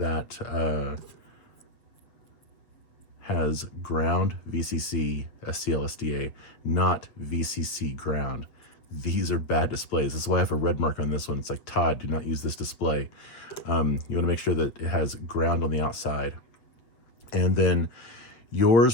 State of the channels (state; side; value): late; right; 8.0 ms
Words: has ground VCC SCLSDA, not VCC ground. These are bad displays. That's why I have a red mark on this one. It's like, Todd, do not use this display. You want to make sure that it has ground on the outside. And then